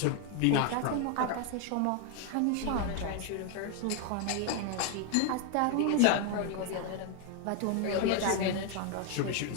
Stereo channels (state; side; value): different; both; correlation 0.01